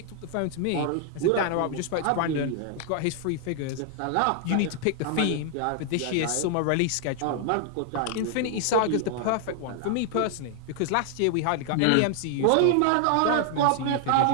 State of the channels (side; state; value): both; different; correlation 0.00